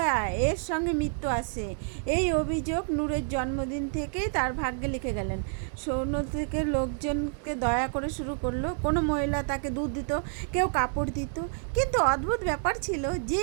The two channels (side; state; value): left; silent; 56 dB below the other